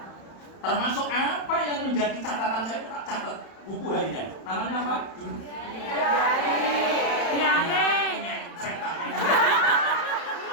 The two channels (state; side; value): late; right; 31 ms